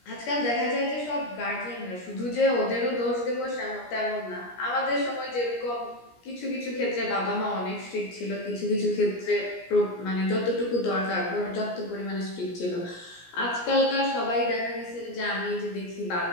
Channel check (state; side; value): late; right; 17 ms